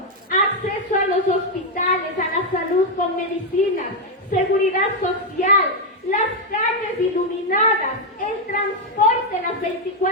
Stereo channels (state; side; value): normal; both; correlation 0.02